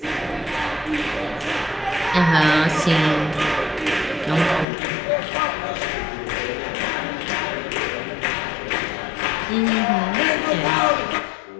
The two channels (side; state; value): right; drops out; at 4.7 s